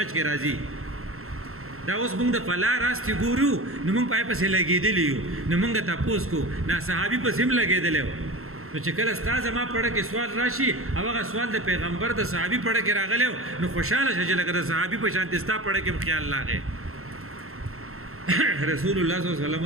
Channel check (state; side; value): late; left; 0.62 ms